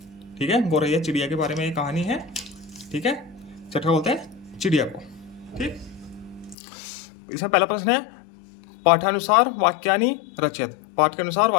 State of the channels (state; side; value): drops out; right; at 6.6 s